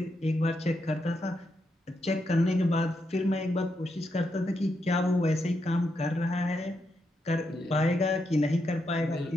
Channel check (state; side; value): normal; both; correlation 0.82